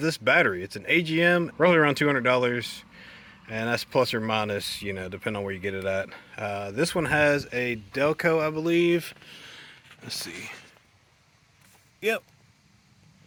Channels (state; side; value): identical; both; correlation 1.00